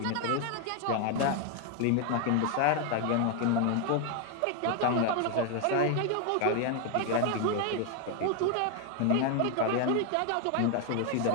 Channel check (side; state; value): both; different; correlation 0.01